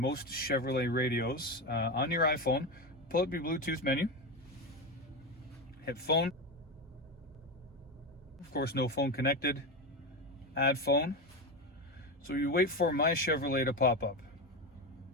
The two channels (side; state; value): both; normal; correlation 0.17